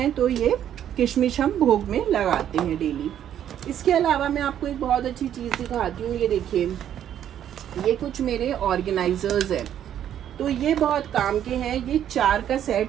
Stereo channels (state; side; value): quieter; left; 10.3 dB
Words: तो ये किशमिश हम भोग में लगाते हैं डेली। इसके अलावा मैं आपको एक बहुत अच्छी चीज़ दिखाती हूँ। ये देखिए, ये कुछ मेरे ऑर्गेनाइजर्स हैं, तो ये बहुत काम के हैं। ये 4 का